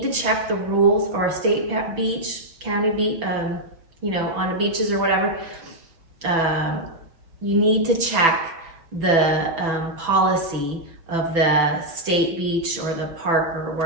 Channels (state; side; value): late; left; 6.0 ms